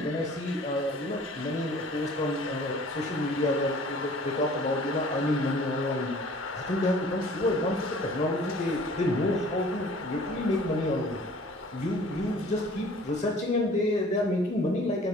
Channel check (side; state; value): both; normal; correlation 0.50